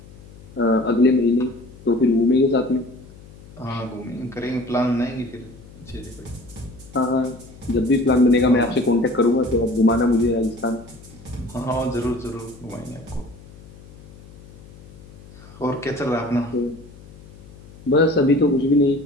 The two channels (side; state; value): left; noise; hum, 20 dB below the sound